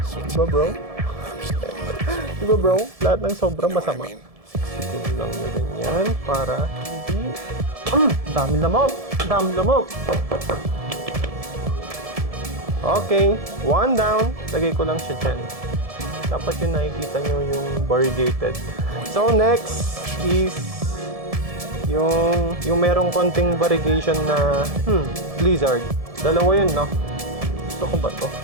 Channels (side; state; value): left; late; 1.7 ms